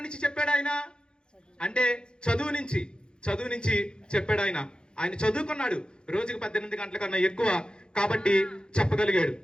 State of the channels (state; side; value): late; right; 0.049 ms